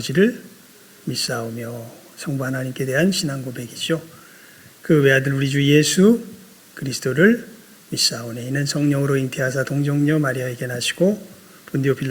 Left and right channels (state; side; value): identical; both; correlation 1.00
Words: 믿사오며 성부 하나님께 대한 신앙 고백이죠. 그 외아들 우리 주 예수 그리스도를 믿사오니 이는 성령으로 잉태하사 동정녀 마리아에게 나시고 본디오